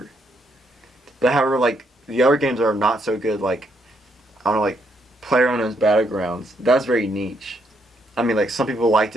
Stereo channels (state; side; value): normal; both; correlation 0.74